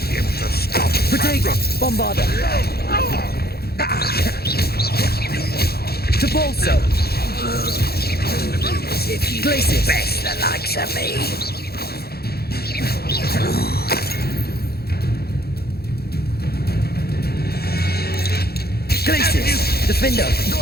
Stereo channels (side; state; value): right; late; 0.46 ms